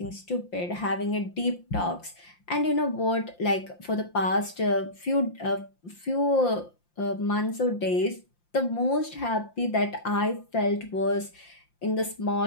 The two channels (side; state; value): right; late; 5.7 ms